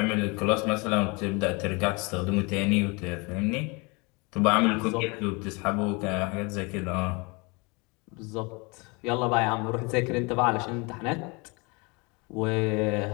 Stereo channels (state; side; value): quieter; right; 28.4 dB